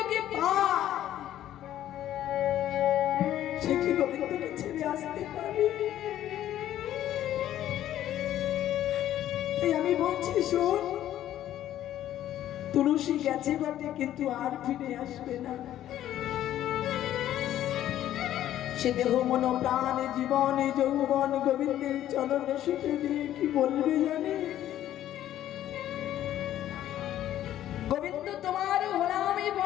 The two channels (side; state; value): right; quieter; 12.3 dB